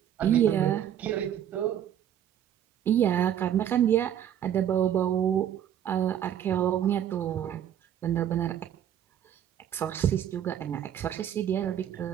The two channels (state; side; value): quieter; left; 10.1 dB